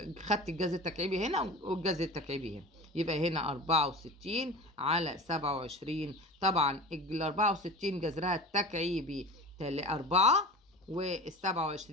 خدت الجذر التكعيبي هنا والجذر التكعيبي هنا، يبقى هنا 64 على 27. طبعا ال 64 جذرها التكعيبي 4 وال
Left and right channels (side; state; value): both; normal; correlation 0.34